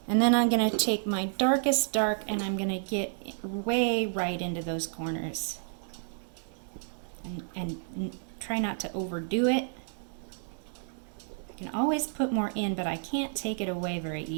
And then I'm going to take my darkest dark and I'm going to get way right into those corners. And try not to overdo it. I can always put more in, but I can't take it away very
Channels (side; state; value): left; silent; 57 dB below the other